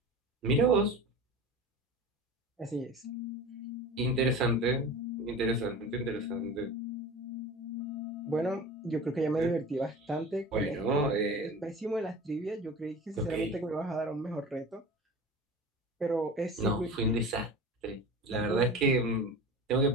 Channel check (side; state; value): both; normal; correlation 0.35